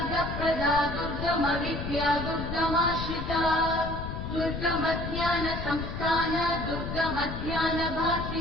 दुर्गमविद्या दुर्गमाश्रिता दुर्गमज्ञानसंस्थान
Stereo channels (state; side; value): noise; left; rumble, 6 dB below the sound